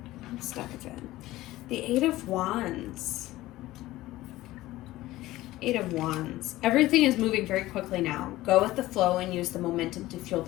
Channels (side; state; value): right; quieter; 16.9 dB